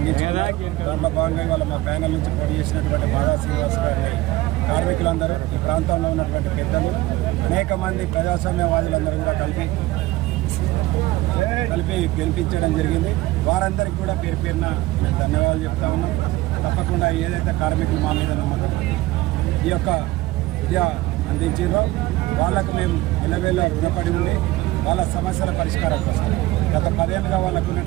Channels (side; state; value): left; quieter; 18.3 dB